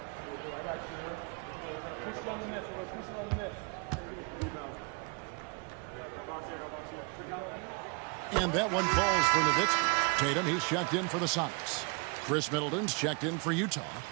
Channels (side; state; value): left; quieter; 32.3 dB